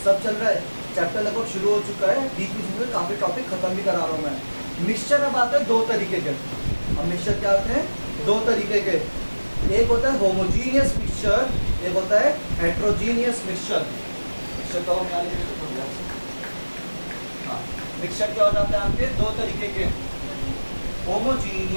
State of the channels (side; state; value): both; inverted; correlation -1.00